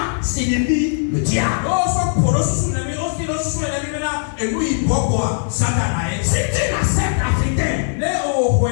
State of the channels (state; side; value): silent; right; 66 dB below the other